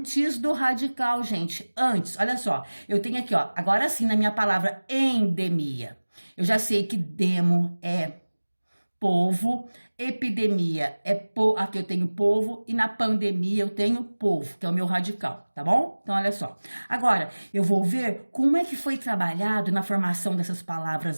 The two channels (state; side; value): inverted; both; correlation -1.00